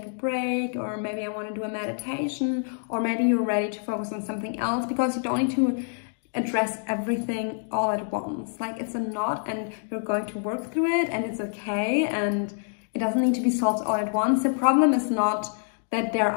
a break? Or maybe I want to do a meditation, or maybe you're ready to focus on something else, because you don't need to address everything all at once. Like, it's a knot and you're going to work through it, and it's okay, and it doesn't need to be solved all at once. The problem is not that there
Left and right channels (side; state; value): right; silent; digital silence